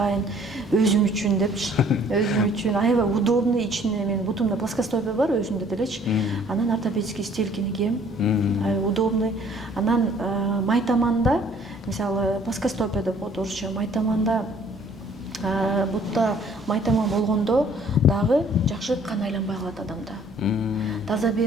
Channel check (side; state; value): both; normal; correlation 0.57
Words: өзүм үчүн депчи. Өзүм үчүн аябай удобный, ичинде мен бутумда плоскостопие бар өзүмдө делечи. Анан ортопедический стелькини кийем. Аябай удобный. Анан майтаманда, мисалы плоскостопия деп коет орусча, майтаманда бутта майтаман болгондо дагы жакшы кан айланбай калат адамда.